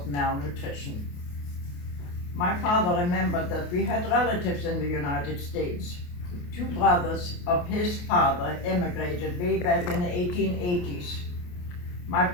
malnutrition. My father remembered that we had relatives in the United States. Two brothers of his father emigrated way back in the 1880s. My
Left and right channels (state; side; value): late; right; 28 ms